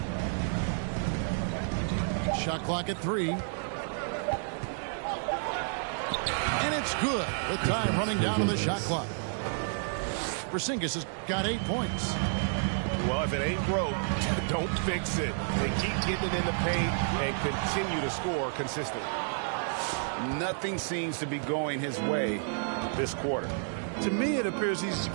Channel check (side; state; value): left; silent; digital silence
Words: Shot clock at 3. And it's good. The time running down to the shot clock. Porzingis has got 8 points. Well, if it ain't broke, don't fix it. They keep getting it in the paint and continue to score consistently. Nothing seems to be going his way this quarter. To me, it appears he's